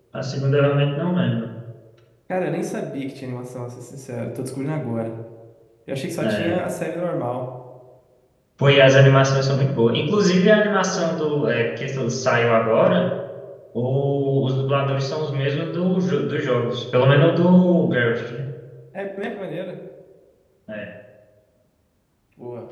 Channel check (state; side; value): identical; both; correlation 1.00